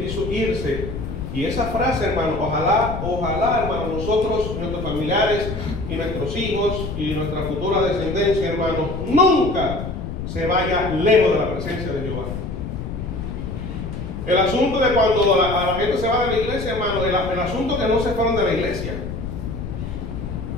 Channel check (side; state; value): left; noise; rumble, 6 dB below the sound